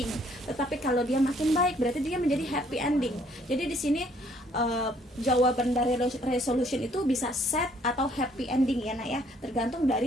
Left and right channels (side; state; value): both; normal; correlation 0.64